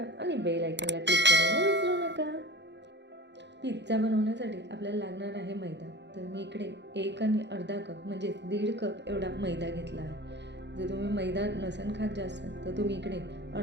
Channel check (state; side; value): late; left; 0.51 ms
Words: आणि बेल आयकॉनला क्लिक करायला विसरू नका. पिझ्झा बनवण्यासाठी आपल्याला लागणार आहे मैदा. तर मी इकडे 1 आणि अर्धा कप म्हणजे 1.5 कप एवढा मैदा घेतला आहे. जर तुम्ही मैदा नसेल खात जास्त तर तुम्ही इकडे